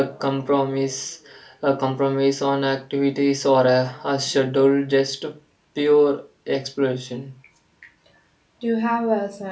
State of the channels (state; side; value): identical; both; correlation 1.00